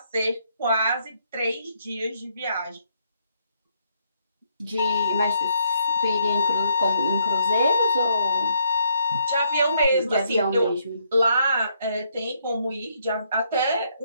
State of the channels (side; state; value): both; inverted; correlation -0.72